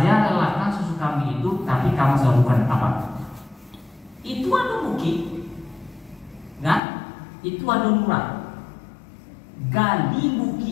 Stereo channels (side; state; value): right; drops out; at 6.8 s